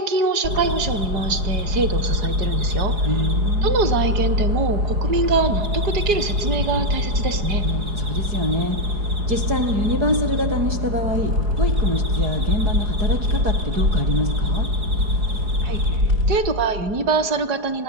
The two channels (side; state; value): left; late; 4.9 ms